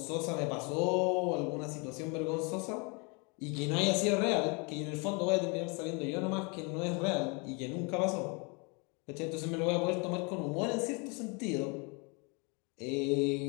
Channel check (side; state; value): right; quieter; 31.7 dB